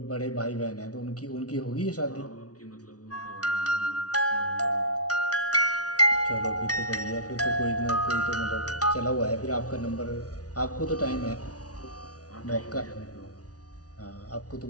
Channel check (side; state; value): right; late; 0.68 ms